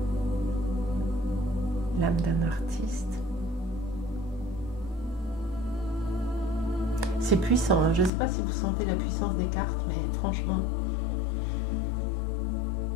L'âme d'un artiste. C'est puissant, hein. Je ne sais pas si vous sentez la puissance des cartes, mais franchement,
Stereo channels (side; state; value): right; drops out; at 8.1 s